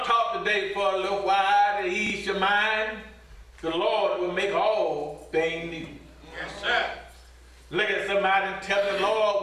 to talk today for a little while to ease your mind. The Lord will make all things new. Yes, sir. Look at somebody and tell the Lord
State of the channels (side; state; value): both; identical; correlation 1.00